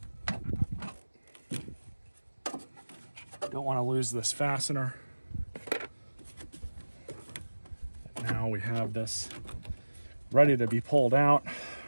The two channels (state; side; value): inverted; both; correlation -1.00